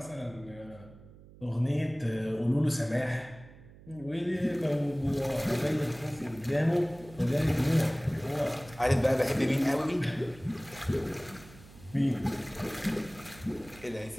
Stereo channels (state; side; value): noise; right; hum, 21 dB below the sound